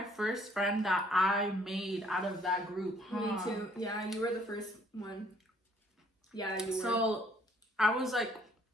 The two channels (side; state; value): both; normal; correlation 0.62